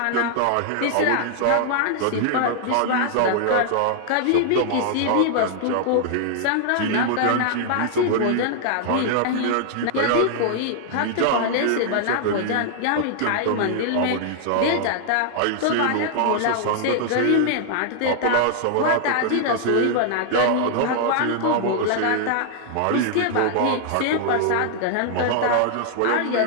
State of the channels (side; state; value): both; different; correlation -0.01